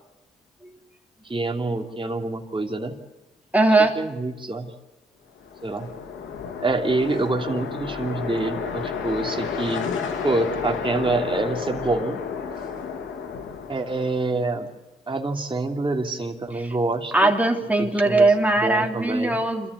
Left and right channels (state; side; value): normal; both; correlation 0.71